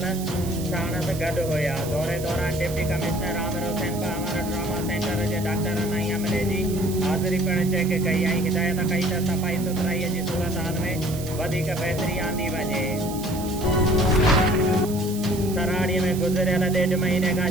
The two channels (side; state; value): right; noise; hiss, 13 dB below the sound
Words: साणस गॾु हुया। दौरे दौरान deputy commissioner Aamir Hussain Pamar trauma centre जे डॉक्टरनि ऐं अमले जी हाज़िरी पिणु चेक कई ऐं हिदायत कई त सफ़ाई सुथराईअ जी सूरत हाल में वधीक बहितरी आंदी वञे। सराड़ीअ में गुज़िरियल 1.5 महीने खां